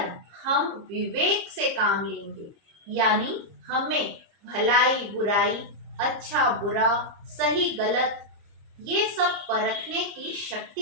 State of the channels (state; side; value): late; left; 30 ms